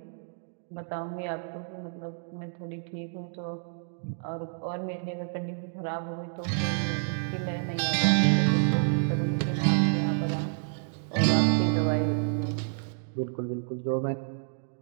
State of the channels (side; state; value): left; silent; digital silence